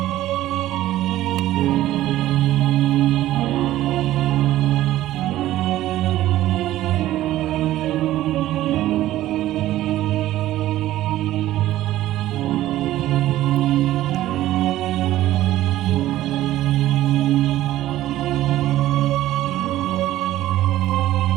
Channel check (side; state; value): left; quieter; 14.6 dB